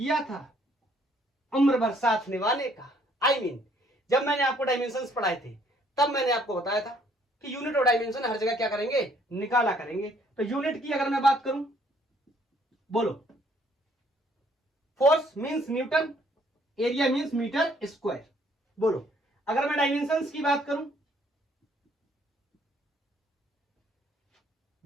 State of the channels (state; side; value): normal; both; correlation 0.64